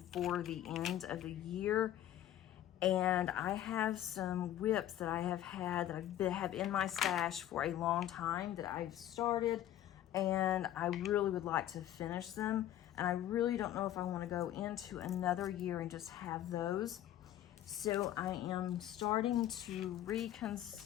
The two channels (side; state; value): right; quieter; 12.2 dB